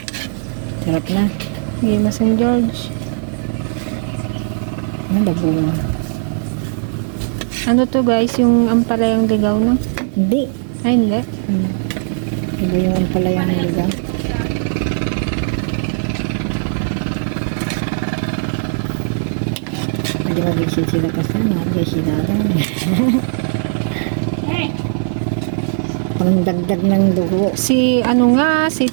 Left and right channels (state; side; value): silent; left; digital silence